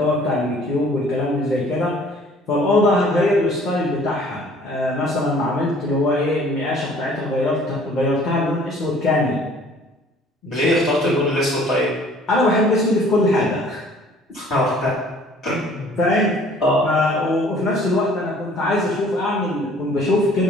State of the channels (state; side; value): normal; both; correlation 0.54